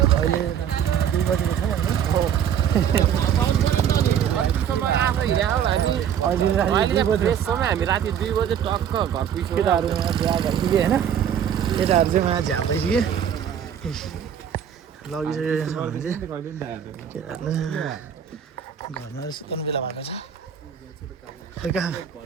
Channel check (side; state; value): left; quieter; 8.9 dB